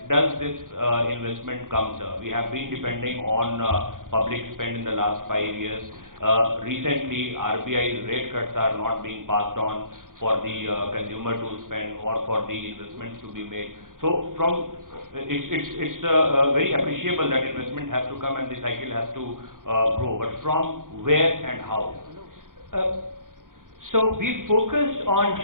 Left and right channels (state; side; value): late; left; 0.89 ms